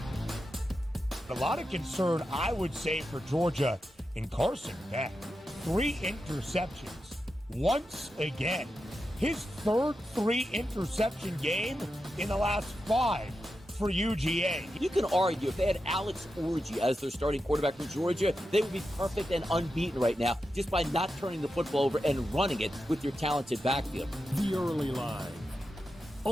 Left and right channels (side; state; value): both; normal; correlation 0.89